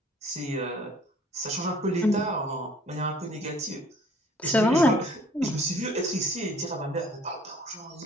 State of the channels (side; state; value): both; normal; correlation 0.56